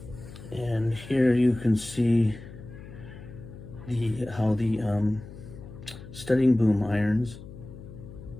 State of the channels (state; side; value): noise; left; hum, 15 dB below the sound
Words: And here you can see how the studding boom irons